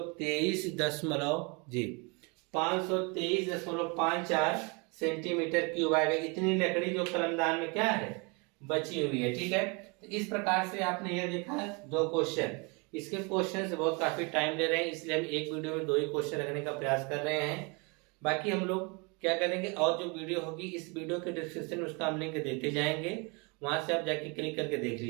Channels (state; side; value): quieter; left; 30.6 dB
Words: सेंटीमीटर क्यूब आएगा। इतनी लकड़ी जो कलमदान में क्या है बची हुई है। ठीक है, तो इस प्रकार से आपने यह देखा 2 क्वेश्चन। इसके क्वेश्चन से बहुत काफी टाइम ले रहे हैं, इसलिए हम एक वीडियो में 2 ही क्वेश्चन रखने का प्रयास कर रहे हैं। बाकी हम लोग क्या करेंगे, और जो वीडियो होगी इस वीडियो के डिस्क्रिप्शन में उसका हम लिंक देते जाएंगे, वहां से आप जाके क्लिक करके देख